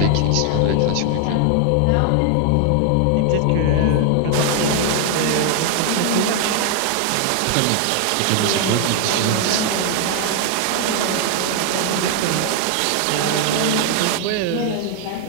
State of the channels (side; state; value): both; different; correlation 0.00